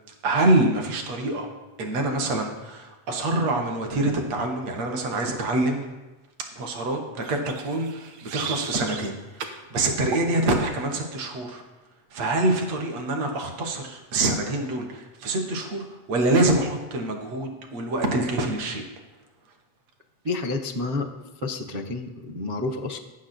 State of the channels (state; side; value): late; left; 8.3 ms